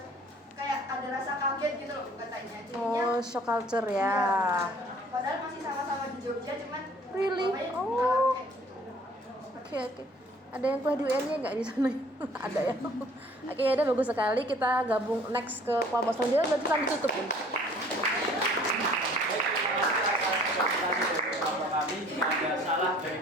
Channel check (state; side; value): normal; both; correlation 0.54